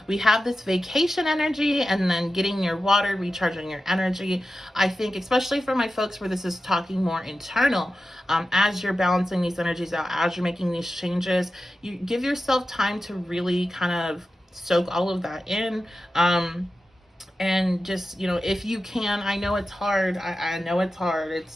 we have this vacation energy and then getting near water, recharging your energy. I think, especially for my folks where this is talking more internal, as you're balancing these energies out, as you're making these changes, you give yourself time to really kind of soak all of that in. And just, you know, if you can, I know it's hard. I know it's hard.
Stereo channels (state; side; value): normal; both; correlation 0.93